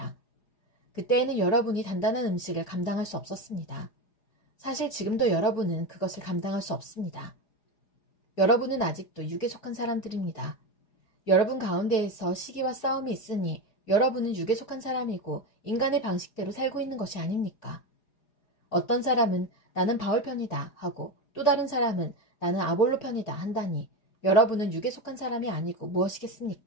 그때에는 여러분이 단단한 음식을 감당할 수 없었습니다. 사실 지금도 여러분은 그것을 감당할 수 없습니다. 여러분은 아직도 육에 속한 사람들입니다. 여러분 가운데에서 시기와 싸움이 있으니 여러분은 육에 속한 사람이고 인간의 방식대로 살고 있는 것이 아닙니까? 어떤 사람은 나는 바울 편이다 하고 또 다른 사람은 나는 아볼로 편이다 한다니 여러분은 육에 속한 사람이 아니고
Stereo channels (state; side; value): late; right; 4.9 ms